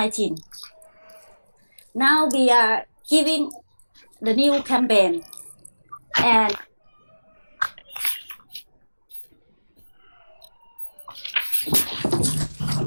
Now we are giving the new campaign and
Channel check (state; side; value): inverted; both; correlation -1.00